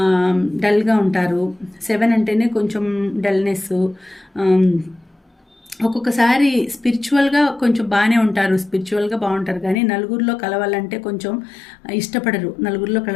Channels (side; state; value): right; drops out; at 9.8 s